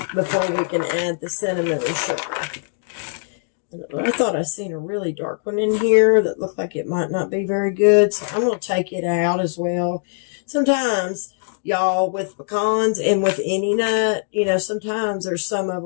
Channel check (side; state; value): right; silent; digital silence